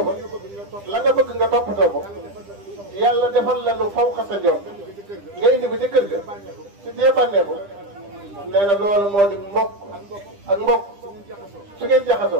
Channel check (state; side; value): late; left; 10 ms